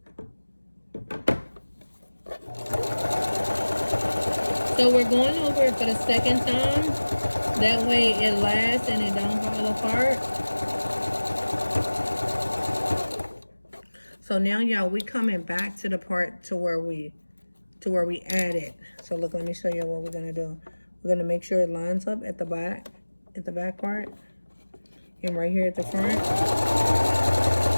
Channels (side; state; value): both; inverted; correlation -1.00